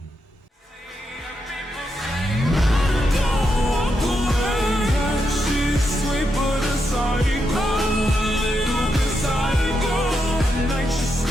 She's sweet but a psycho.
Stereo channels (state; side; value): normal; both; correlation 0.83